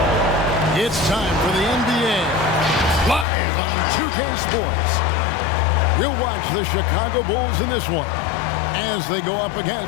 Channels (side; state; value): right; drops out; at 3.2 s